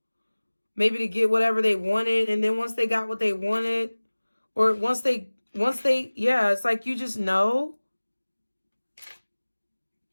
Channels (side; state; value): both; inverted; correlation -1.00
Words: Maybe to get whatever they wanted. And then once they got what they wanted, or once they, yeah, it's like you just know.